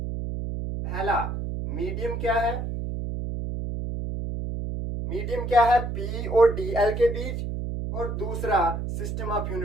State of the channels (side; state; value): right; noise; hum, 4 dB below the sound